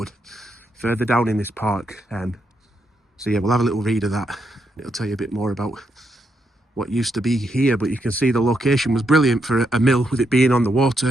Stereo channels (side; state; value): both; normal; correlation 0.80